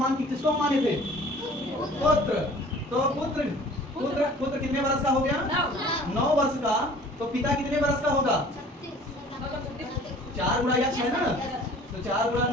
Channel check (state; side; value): normal; both; correlation 0.48